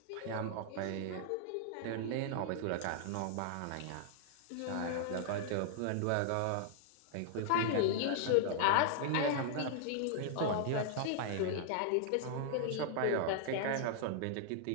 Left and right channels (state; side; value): different; both; correlation -0.01